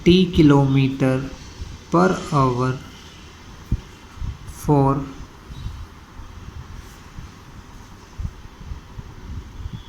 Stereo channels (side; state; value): both; identical; correlation 1.00